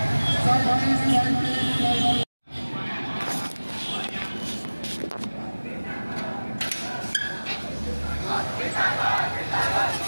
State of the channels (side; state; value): both; inverted; correlation -1.00